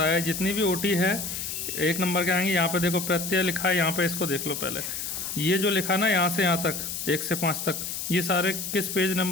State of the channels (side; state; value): left; noise; hiss, 5 dB below the sound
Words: है जितनी भी ओटी है 1 नंबर के आएंगे। यहाँ पे देखो प्रत्यय लिखा है, यहाँ पे इसको देख लो पहले। ये जो लिखा ना यहाँ से यहाँ तक 1 से 5 तक, ये सारे किस पेज